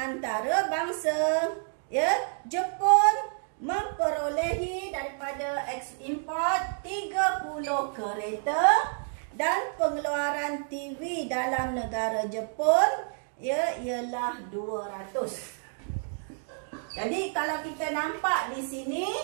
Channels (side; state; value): left; silent; digital silence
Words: ya, Jepun memperolehi daripada ekspor 30 kereta dan pengeluaran TV dalam negara Jepun ya ialah 200. Jadi kalau kita nampak di sini,